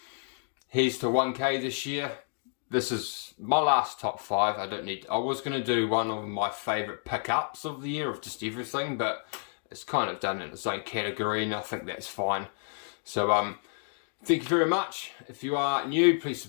Here's to 1K this year. This is my last top 5. I was going to do one of my favourite pickups of the year of just everything, but it's kind of done in its own category, and I think that's fine. So thank you very much. If you are new, please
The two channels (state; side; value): silent; right; 58 dB below the other